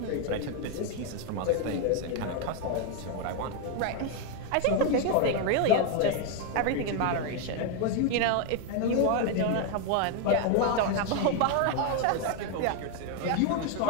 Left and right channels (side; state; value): both; different; correlation 0.01